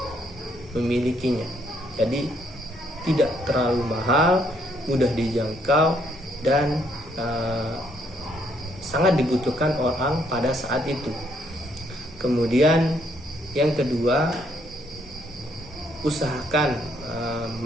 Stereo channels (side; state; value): both; normal; correlation 0.70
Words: memilikinya. Jadi tidak terlalu mahal, mudah dijangkau, dan sangat dibutuhkan orang pada saat itu. Kemudian yang kedua, usahakan